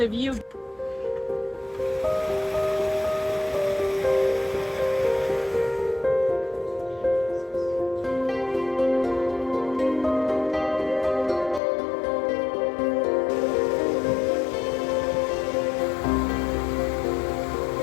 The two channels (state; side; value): drops out; right; at 11.6 s